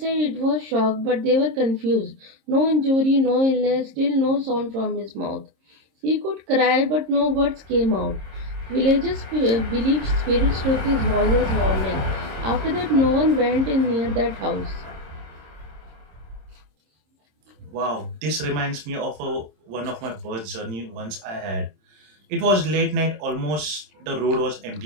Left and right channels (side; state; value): left; late; 26 ms